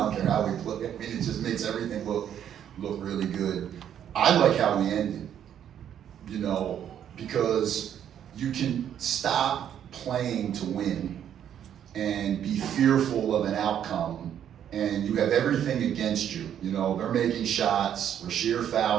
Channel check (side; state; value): left; quieter; 9.7 dB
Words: don't care how we play. I mean, it just makes everything look really good. I like how we ended, you know, because you can stop playing to win and be fearful of an outcome, and you have everything against you. You know, they're making shots, Rasheer